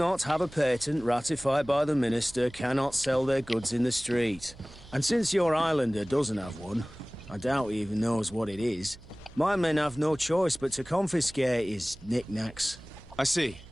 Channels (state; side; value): noise; right; hum, 20 dB below the sound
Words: have a patent ratified by the minister cannot sell their goods in the street. And since your islander doesn't have one, I doubt he even knows what it is, my men have no choice but to confiscate his knickknacks. I see.